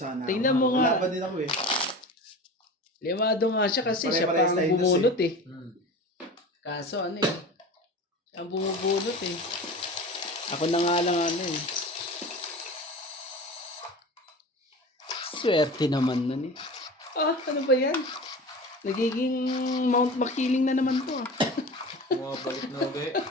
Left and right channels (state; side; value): normal; both; correlation 0.34